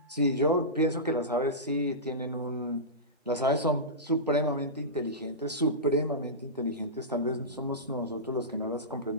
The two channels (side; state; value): both; normal; correlation -0.17